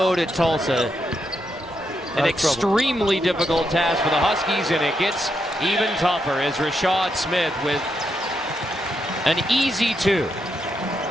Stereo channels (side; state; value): both; normal; correlation 0.81